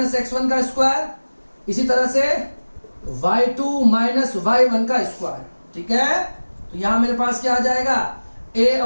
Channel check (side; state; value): both; inverted; correlation -1.00